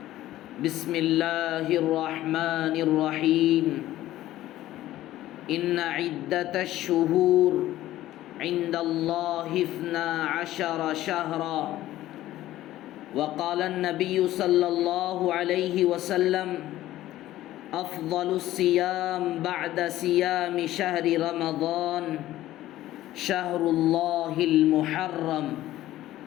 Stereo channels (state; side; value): quieter; right; 14.7 dB